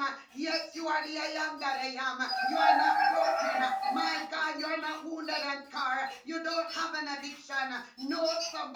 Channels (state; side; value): identical; both; correlation 1.00